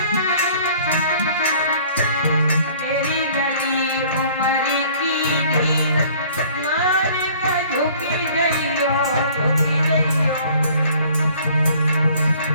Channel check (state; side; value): inverted; both; correlation -0.53